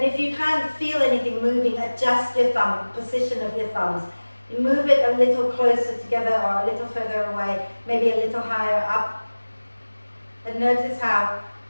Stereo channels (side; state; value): both; inverted; correlation -1.00